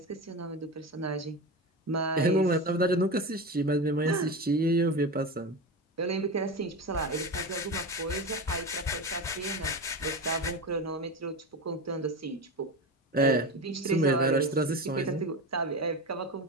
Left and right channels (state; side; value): normal; both; correlation 0.23